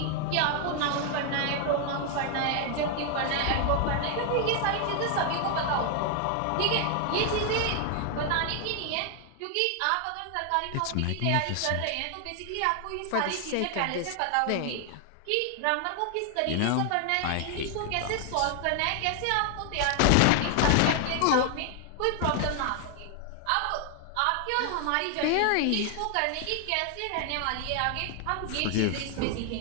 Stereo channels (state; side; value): different; both; correlation 0.00